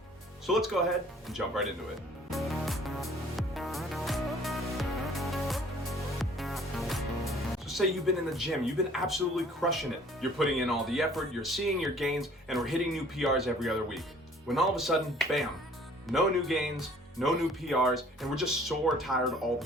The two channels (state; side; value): normal; both; correlation 0.55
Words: So let's go ahead and jump right into it. So say you've been in the gym, you've been absolutely crushing it. You're putting in all the effort, you're seeing your gains, and we're hitting new PRs every other week. When all of a sudden, bam, no new gains, no new PRs, and we're just sore tired all the